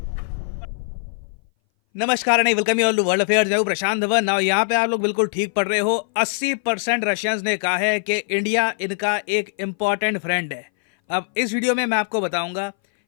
नमस्कार and welcome you all to world affairs. मैं हूं प्रशांत धवन। नाउ यहाँ पे आप लोग बिल्कुल ठीक पढ़ रहे हो। 80% रशियंस ने कहा है कि इंडिया इनका एक इम्पॉर्टेंट फ्रेंड है। अब इस वीडियो में मैं आपको बताऊंगा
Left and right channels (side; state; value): right; silent; 60 dB below the other